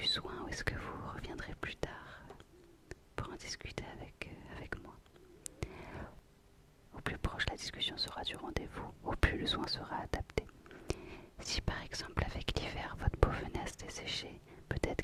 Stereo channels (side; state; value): both; identical; correlation 1.00